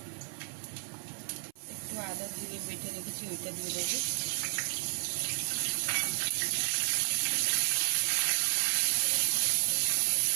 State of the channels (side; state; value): left; silent; 56 dB below the other